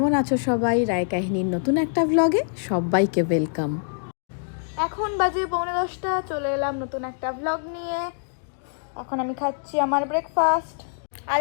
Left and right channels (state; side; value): silent; right; digital silence